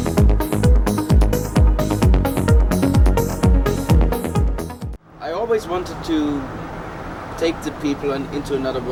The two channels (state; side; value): identical; both; correlation 1.00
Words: I always wanted to take the people into another